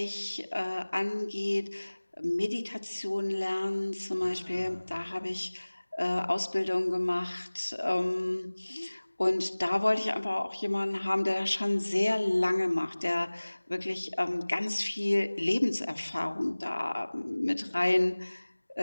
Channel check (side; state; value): both; inverted; correlation -1.00